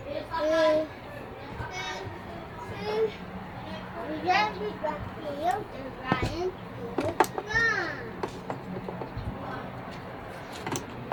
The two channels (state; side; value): identical; both; correlation 1.00